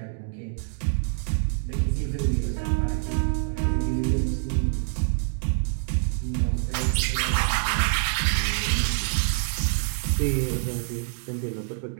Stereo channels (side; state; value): left; silent; digital silence